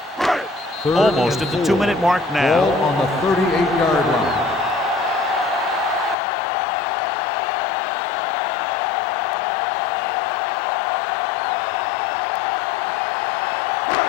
Almost at the 2-minute mark now. Ball on the 38-yard line.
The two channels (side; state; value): right; drops out; at 6.2 s